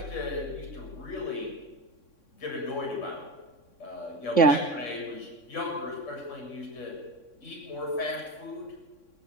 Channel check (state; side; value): late; right; 3.6 ms